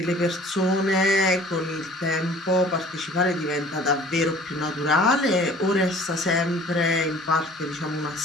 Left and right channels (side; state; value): both; normal; correlation 0.50